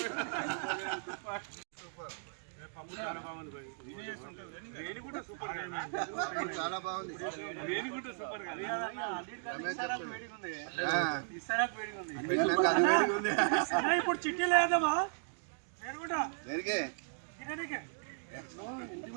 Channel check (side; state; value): left; silent; digital silence